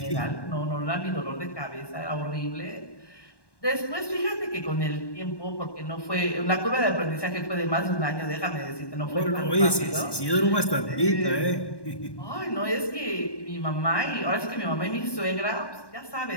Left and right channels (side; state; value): right; late; 1.1 ms